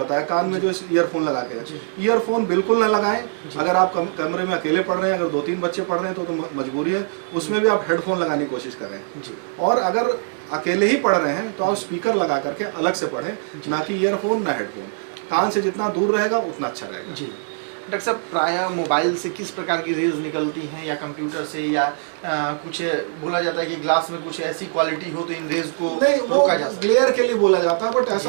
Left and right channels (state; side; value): silent; left; 60 dB below the other